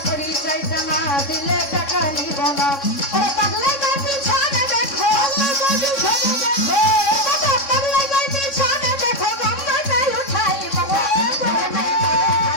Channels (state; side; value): late; right; 3.6 ms